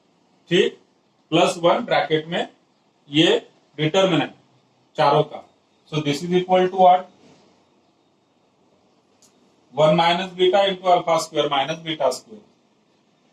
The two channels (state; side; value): identical; both; correlation 1.00